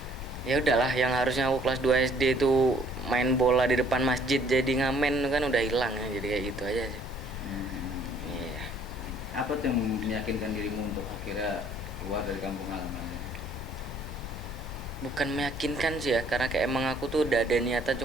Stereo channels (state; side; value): normal; both; correlation 0.60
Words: ya udahlah, yang harusnya aku kelas 2 SD itu main bola di depan masjid jadi ngamen kan udah hilang ya, jadi kayak gitu aja sih. Iya. Apa tuh yang meyakinkan dirimu untuk akhirnya keluar dari kampung halamannya? Bukan meyakinkan sih ya, karena kayak emang aku tuh udah ada niatan,